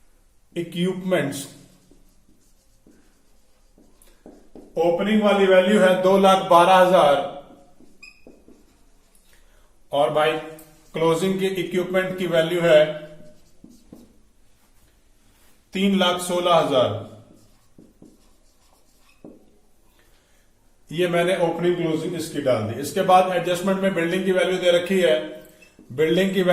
इक्विपमेंट्स ओपनिंग वाली वैल्यू है 2,12,000 और भाई क्लोजिंग के इक्विपमेंट की वैल्यू है 3,16,000। ये मैंने ओपनिंग क्लोजिंग इसकी डाल दी। इसके बाद एडजस्टमेंट में बिल्डिंग की वैल्यू दे रखी है। बिल्डिंग की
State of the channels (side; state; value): both; identical; correlation 1.00